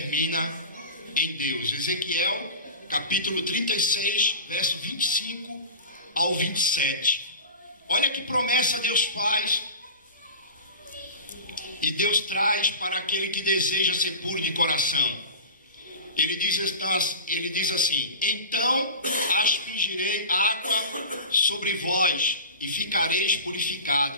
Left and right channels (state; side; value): inverted; both; correlation -0.33